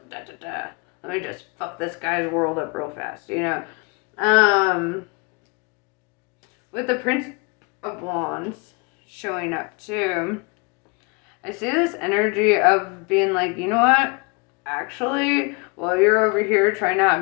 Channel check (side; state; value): right; quieter; 30.1 dB